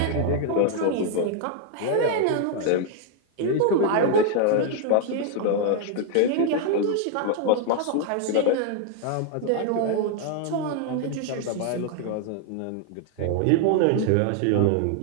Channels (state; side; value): different; both; correlation 0.00